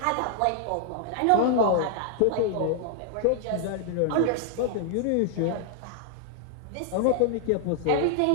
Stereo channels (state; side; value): different; both; correlation -0.01